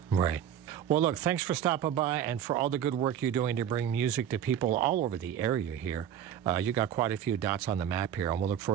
Right. Well, look, thanks for stopping by and for all the good work you're doing to bring music to people all over the area here. You got quite a few dots on the map here, and we'll look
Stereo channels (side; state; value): left; quieter; 9.8 dB